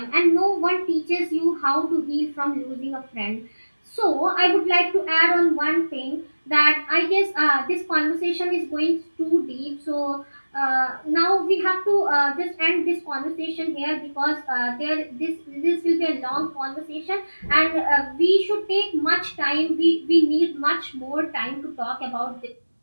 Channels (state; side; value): inverted; both; correlation -1.00